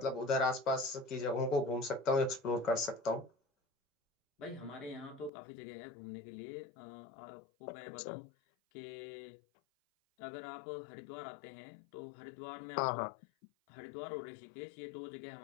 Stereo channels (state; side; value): drops out; right; at 5.3 s